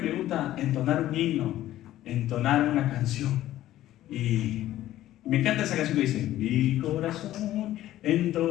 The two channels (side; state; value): right; quieter; 13.9 dB